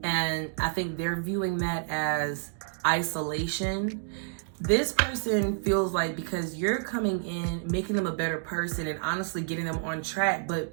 And I think they're viewing that as isolation. This person feels like because you're coming in, making them a better person and honestly getting them on track,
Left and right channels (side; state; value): left; silent; digital silence